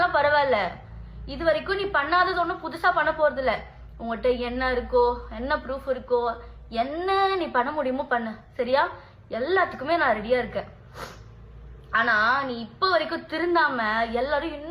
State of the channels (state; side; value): identical; both; correlation 1.00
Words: பரவாயில்ல. இது வரைக்கும் நீ பண்ணாதது ஒன்றும் புதுசா பண்ண போறது இல்ல. உங்ககிட்ட என்ன இருக்கோ, என்ன ப்ரூஃப் இருக்கோ, என்ன நீ பண்ண முடியுமோ பண்ணு, சரியா? எல்லாத்துக்குமே நான் ரெடியா இருக்கேன். ஆனா நீ இப்ப வரைக்கும் திருந்தாம எல்லாரும்